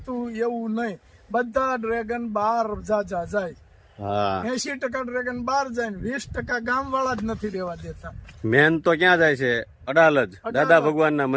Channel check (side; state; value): both; identical; correlation 1.00